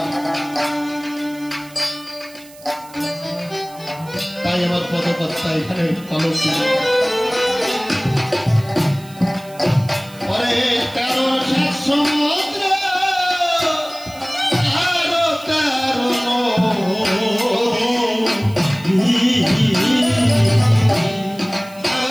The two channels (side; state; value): right; noise; hiss, 22 dB below the sound